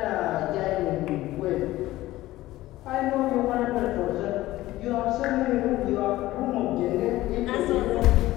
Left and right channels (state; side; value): quieter; right; 16.5 dB